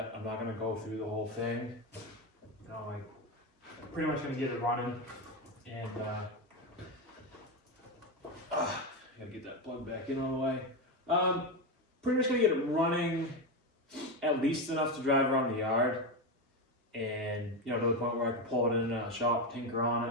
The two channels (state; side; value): normal; both; correlation 0.13